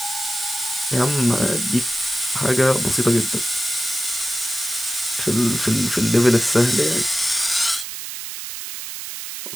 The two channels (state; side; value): noise; right; hiss, 8 dB below the sound